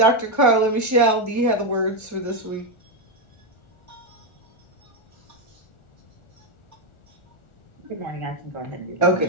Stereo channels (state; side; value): late; right; 1.4 ms